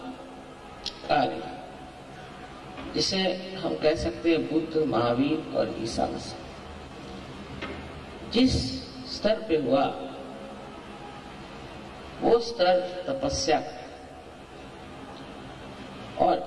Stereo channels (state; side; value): identical; both; correlation 1.00